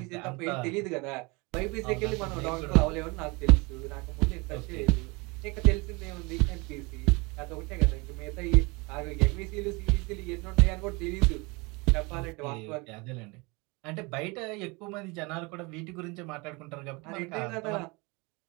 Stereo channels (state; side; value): quieter; left; 27.1 dB